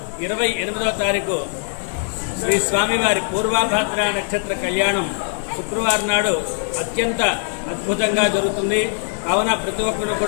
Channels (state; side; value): silent; right; 65 dB below the other